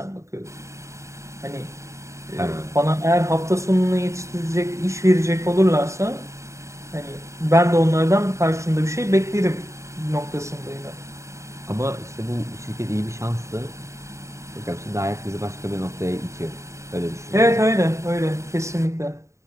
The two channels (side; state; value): left; late; 0.14 ms